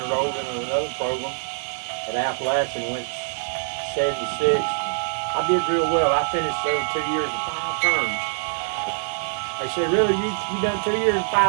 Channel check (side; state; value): left; silent; digital silence